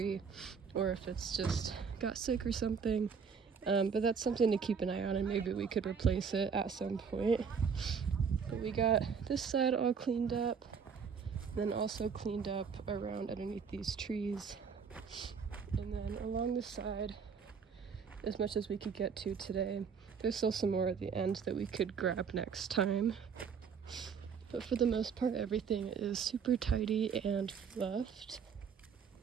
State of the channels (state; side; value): quieter; left; 6.3 dB